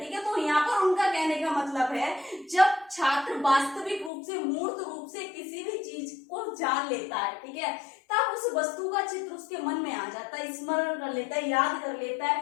है। तो यहाँ पर उनका कहने का मतलब है, जब छात्र वास्तविक रूप से, मूर्त रूप से किसी भी चीज को जान लेता है, ठीक है, तब उस वस्तु का चित्र उसके मन में आ जाता है, स्मरण कर लेता है, याद कर लेता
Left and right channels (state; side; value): drops out; right; at 4.1 s